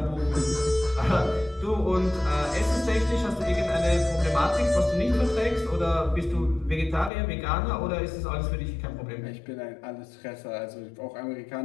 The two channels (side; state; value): right; drops out; at 7.1 s